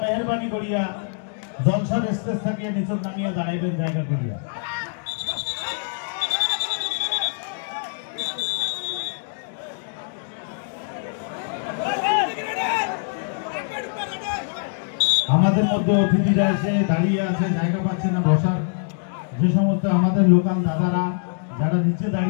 মেহরবানি করিয়া জলসার স্টেজ থেকে নিচে নামিয়ে দাঁড়াইবেন জায়গা করিয়া। আমাদের মধ্যে অতিথিরা এসে দাঁড়িয়ে আছে, জায়গা পাচ্ছে না বসার। যে সমস্ত আমাদের লোকাল দাদারা যারা নিচে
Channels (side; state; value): right; silent; digital silence